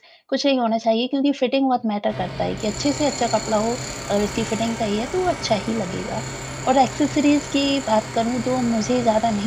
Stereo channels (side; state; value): both; identical; correlation 1.00